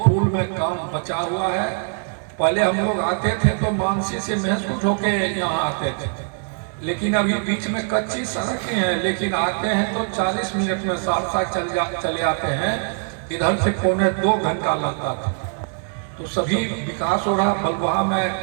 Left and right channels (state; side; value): silent; left; 56 dB below the other